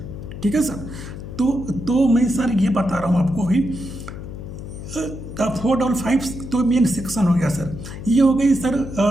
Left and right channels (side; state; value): left; noise; hum, 10 dB below the sound